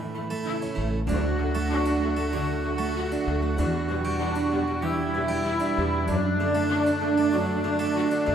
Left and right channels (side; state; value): both; normal; correlation 0.74